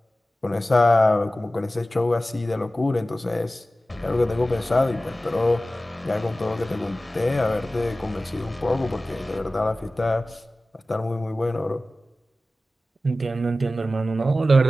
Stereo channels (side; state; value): both; normal; correlation 0.95